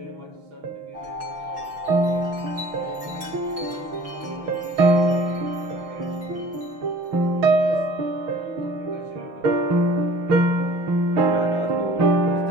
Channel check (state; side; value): late; left; 6.0 ms